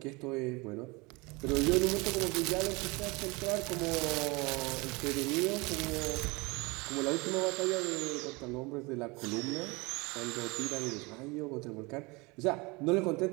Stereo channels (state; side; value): quieter; left; 25.8 dB